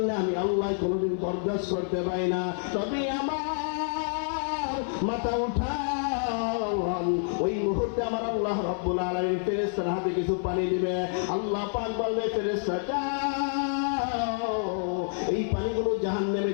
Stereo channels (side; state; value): right; silent; 57 dB below the other